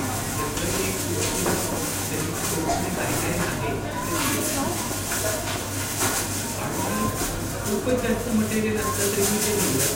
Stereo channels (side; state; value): both; identical; correlation 1.00